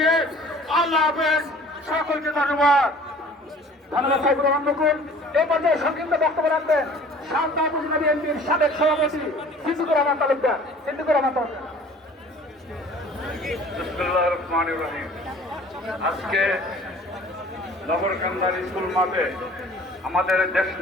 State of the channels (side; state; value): both; normal; correlation 0.49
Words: আল্লাহ হাফেজ, সকলকে ধন্যবাদ। ধন্যবাদ সাইফুর রহমান বকুল। এই পর্যায়ে সংক্ষিপ্ত বক্তব্য রাখবেন শান্তা উপজেলা বিএনপির সাবেক সভাপতি সিদ্দিকুর রহমান তালুকদার। সিদ্দিকুর রহমান তালুকদার। বিসমিল্লাহির রহমানির রহিম। আজকে নগরকান্দার স্কুল মাঠে আমাদের